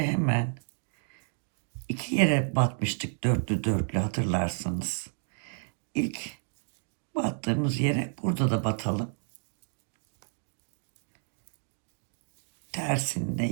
hemen 2 yere batmıştık dörtlü dörtlü, hatırlarsanız. İlk battığımız yere burada da batalım. Tersinde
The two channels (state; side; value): silent; left; digital silence